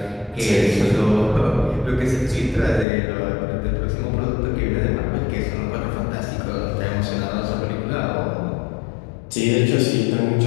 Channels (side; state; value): right; drops out; at 2.9 s